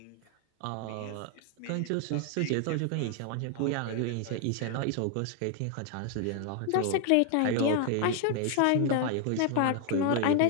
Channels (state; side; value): different; both; correlation 0.00